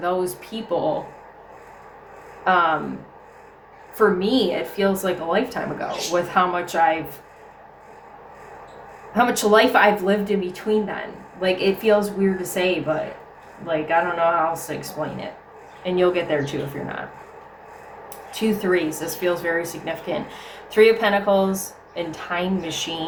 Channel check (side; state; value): both; identical; correlation 1.00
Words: people, for me, it feels like a lifetime ago with how much life I've lived in between then. Like, it feels weird to say, but like, I don't know how else to explain it. And you'll get there too if you're not. 2 3s. This feels very significant. 3 of Pentacles and Time